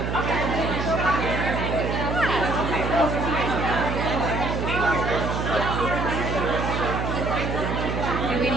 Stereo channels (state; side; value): noise; right; hum, 2 dB below the sound